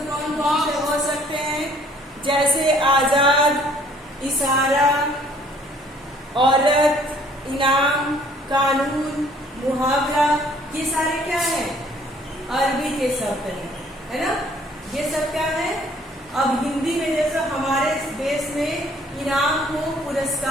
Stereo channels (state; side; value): normal; both; correlation 0.58